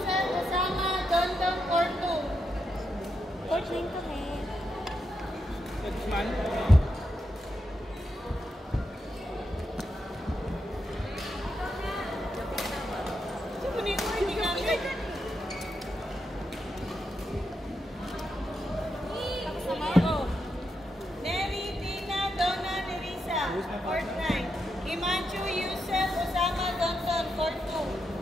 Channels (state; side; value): normal; both; correlation 0.84